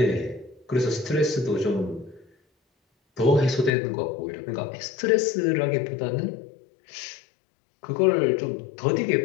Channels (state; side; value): drops out; right; at 3.7 s